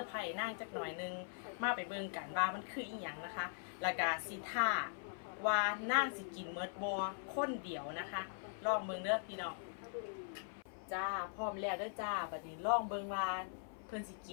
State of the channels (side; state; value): right; silent; 50 dB below the other